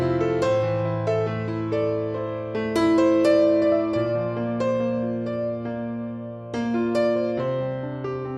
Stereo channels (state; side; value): identical; both; correlation 1.00